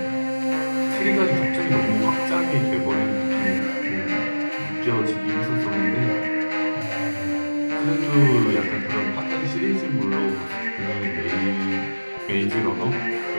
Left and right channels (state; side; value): inverted; both; correlation -1.00